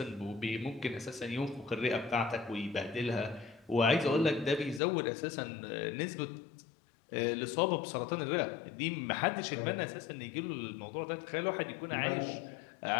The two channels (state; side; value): drops out; right; at 4.8 s